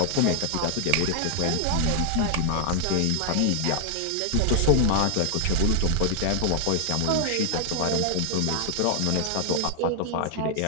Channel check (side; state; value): both; different; correlation 0.00